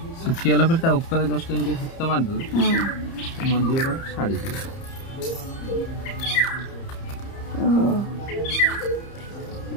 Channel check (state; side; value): late; right; 30 ms